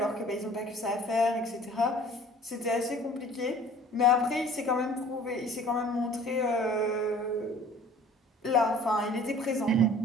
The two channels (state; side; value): normal; both; correlation 0.49